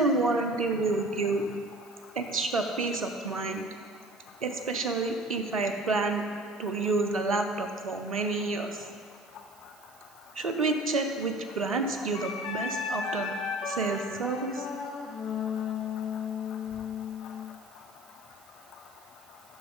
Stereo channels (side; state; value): right; noise; hiss, 28 dB below the sound